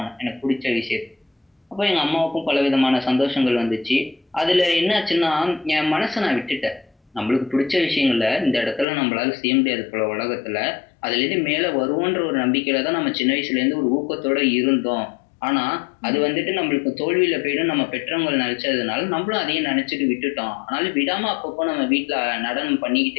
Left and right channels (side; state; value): right; drops out; at 8.8 s